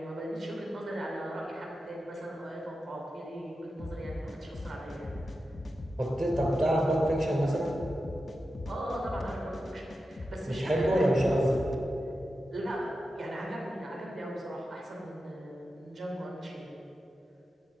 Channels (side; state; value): both; normal; correlation 0.91